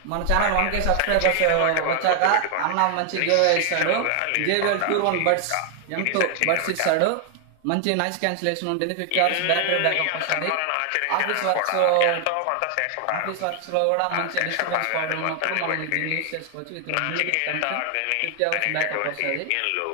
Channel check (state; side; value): different; both; correlation 0.00